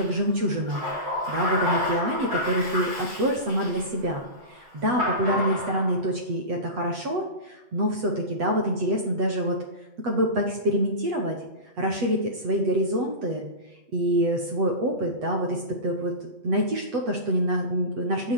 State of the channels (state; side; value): late; left; 8.1 ms